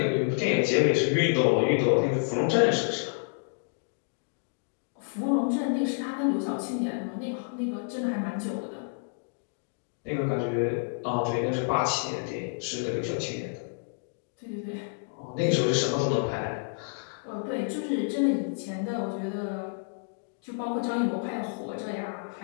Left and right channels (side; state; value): right; silent; digital silence